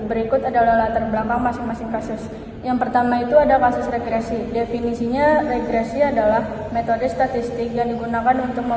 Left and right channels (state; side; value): identical; both; correlation 1.00